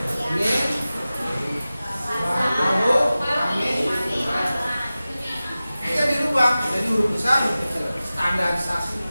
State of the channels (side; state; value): both; inverted; correlation -0.96